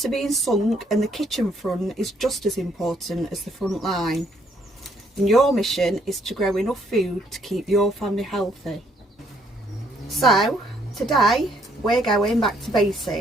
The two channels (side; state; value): both; normal; correlation 0.68